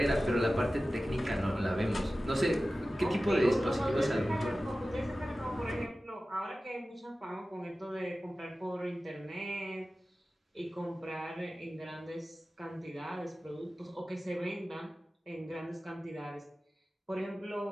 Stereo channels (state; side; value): normal; both; correlation 0.95